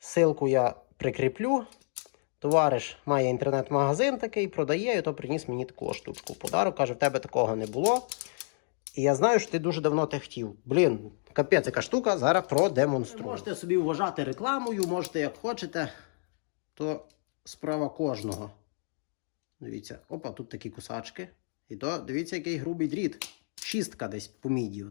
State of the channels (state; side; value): silent; right; 58 dB below the other